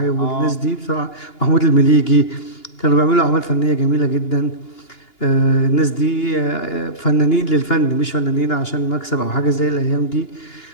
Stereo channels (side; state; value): right; late; 2.8 ms